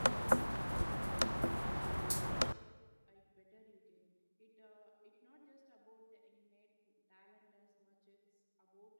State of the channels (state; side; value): inverted; both; correlation -1.00